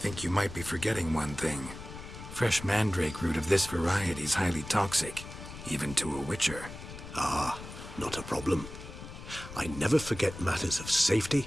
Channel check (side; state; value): left; noise; rumble, 12 dB below the sound